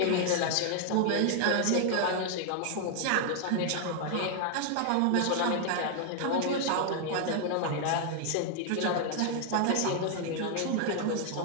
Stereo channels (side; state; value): both; different; correlation 0.00